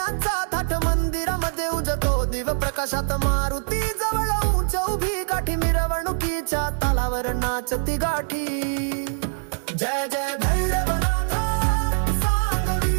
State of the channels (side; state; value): left; silent; digital silence